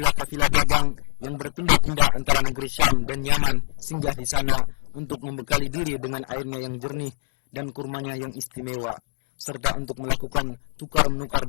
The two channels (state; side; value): silent; right; digital silence